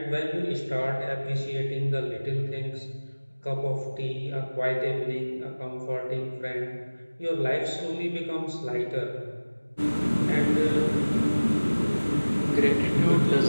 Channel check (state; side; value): inverted; both; correlation -1.00